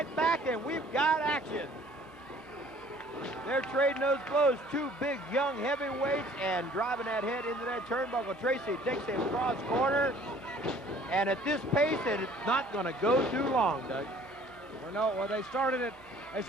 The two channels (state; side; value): normal; both; correlation 0.54